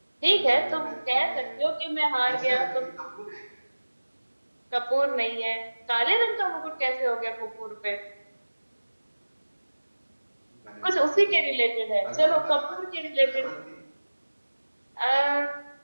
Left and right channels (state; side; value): inverted; both; correlation -1.00